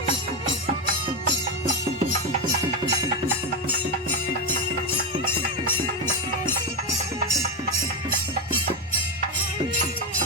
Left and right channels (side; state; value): both; normal; correlation 0.11